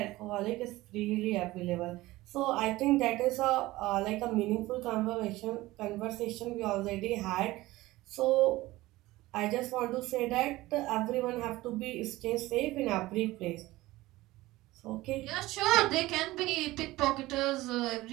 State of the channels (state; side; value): quieter; left; 18.3 dB